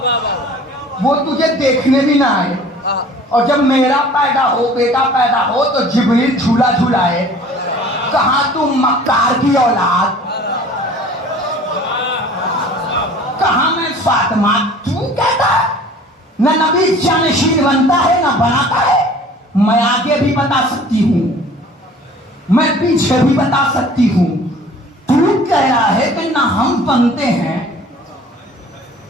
वो तुझे देखने भी ना आए, और जब मेरा पैदा हो, बेटा पैदा हो, तो जिब्रील झूला झूलाए। कहा तू मक्कार की औलाद, कहा मैं फातिमा। तू कहता है न नबी जानशीन बनता है न बनाता है। मैं आगे भी बता सकती हूं, मैं पीछे भी बता सकती हूं। तू कह रहा है कि ना हम बनते हैं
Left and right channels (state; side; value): normal; both; correlation 0.48